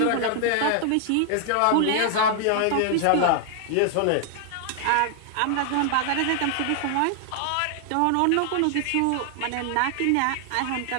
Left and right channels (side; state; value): both; different; correlation 0.00